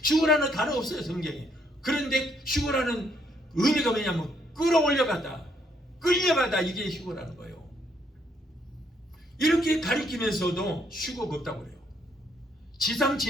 휴거라는 단어 없어요, 성경에. 그런데 휴거라는 의미가 뭐냐면 끌어올려가다, 끌려가다, 이게 휴거라는 거예요. 이렇게 가리키면서도 휴거가 없다고 그래요.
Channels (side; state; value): both; normal; correlation 0.71